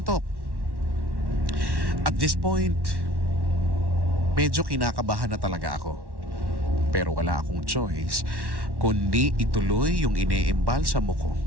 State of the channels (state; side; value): late; left; 1.1 ms